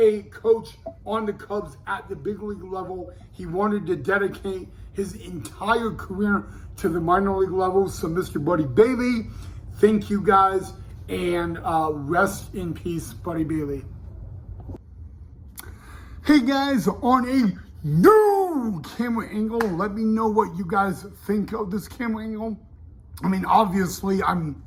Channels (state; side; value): identical; both; correlation 1.00